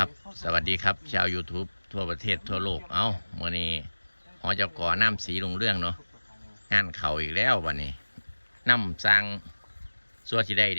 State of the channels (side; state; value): both; inverted; correlation -1.00